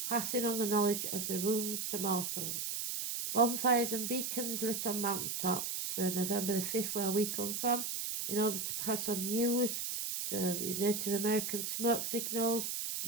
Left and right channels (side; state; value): right; noise; hiss, 2 dB below the sound